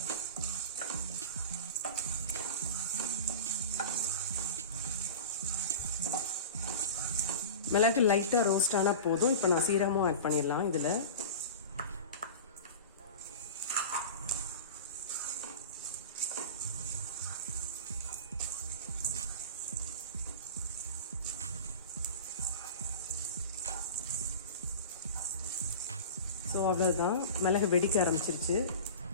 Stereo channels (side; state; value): both; inverted; correlation -0.33